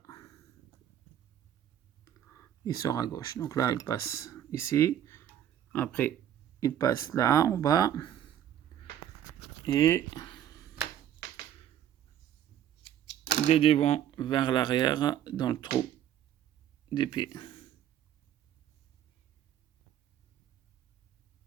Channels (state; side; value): quieter; left; 10.6 dB